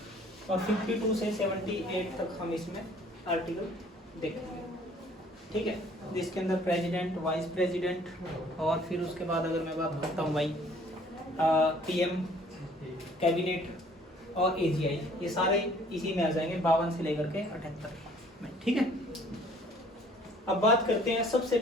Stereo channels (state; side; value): normal; both; correlation 0.56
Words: और 52 से 78 तक हम इसमें आर्टिकल देखेंगे। ठीक है, जिसके अंदर प्रेसिडेंट, वाइस प्रेसिडेंट और फिर उसके बाद अगर मैं बात करता हूँ भाई पीएम, कैबिनेट और एजीआई, ये सारे इसी में आ जाएंगे 52 से लेकर के 78 में। ठीक है, अब बात करते हैं सबसे